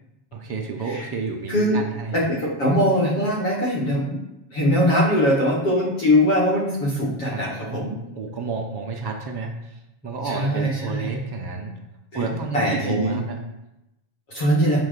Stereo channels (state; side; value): late; right; 7.3 ms